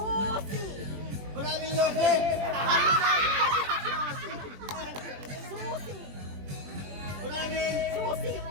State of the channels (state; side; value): late; left; 21 ms